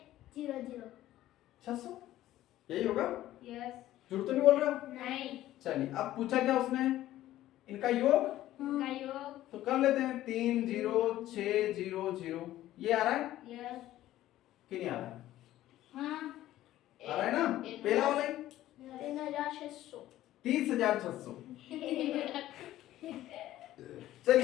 600 यही होगा? यस झूठ तो नहीं बोल रहे हो? नहीं चलिए अब पूछा क्या उसने, इनका योग का योग तो कर लेते हैं। 3 0 6 0 0 ये आ रहा है यस कि नहीं आ रहा है? हाँ आ रहा है ना, पहला वाला ही 3600 30,600।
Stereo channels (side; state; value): right; quieter; 14.2 dB